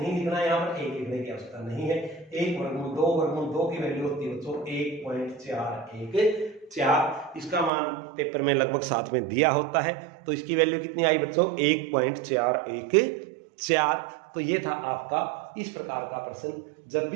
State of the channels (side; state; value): left; drops out; at 7.7 s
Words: लिखना है, यहाँ पर एक लिखने की आवश्यकता नहीं है। 1 वर्गमूल 2 की वैल्यू होती है बच्चों 1.414। इसका मान पेपर में लगभग साथ में दिया होता है, तो इसकी वैल्यू कितनी आई बच्चों? 1.414। तो ये था आपका इस प्रकार का प्रश्न। जब